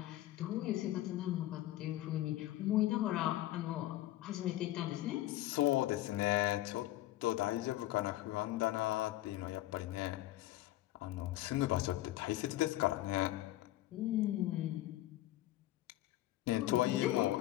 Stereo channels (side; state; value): right; quieter; 15.6 dB